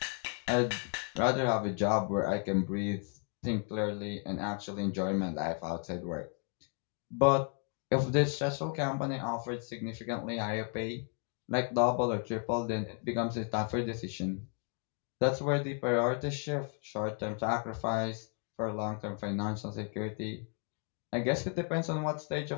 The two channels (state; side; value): quieter; right; 38.2 dB